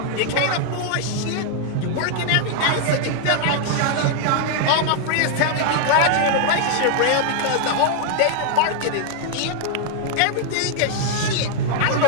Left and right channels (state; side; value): different; both; correlation 0.00